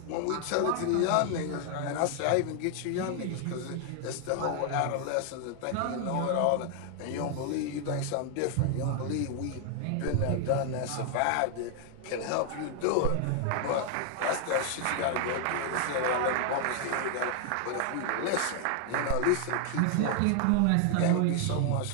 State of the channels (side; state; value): both; different; correlation 0.00